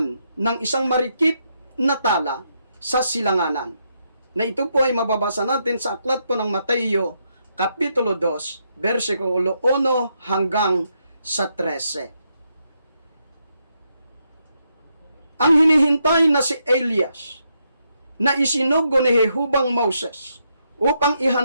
ng isang marikit na tala sa silanganan. Na ito po ay mababasa natin sa aklat po ng Mateo, Kapitulo 2, versikulo 1 hanggang sa 13. Ang hinihintay na si Elias, na isinugo ni Jehubang Moses, upang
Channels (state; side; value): inverted; both; correlation -0.79